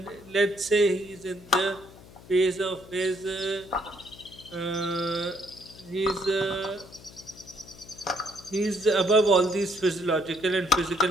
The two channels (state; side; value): noise; left; hum, 20 dB below the sound